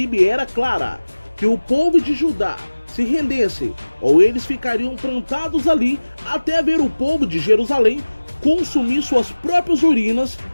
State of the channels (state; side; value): inverted; both; correlation -1.00